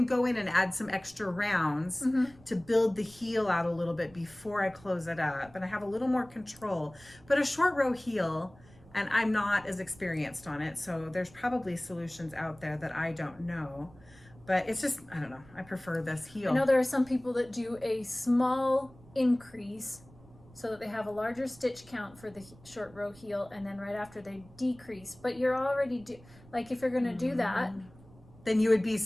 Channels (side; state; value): right; noise; rumble, 24 dB below the sound